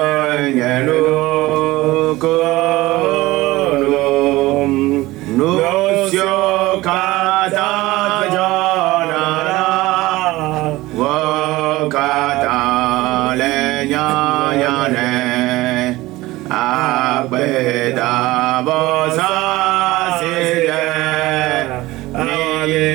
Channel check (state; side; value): quieter; left; 18.9 dB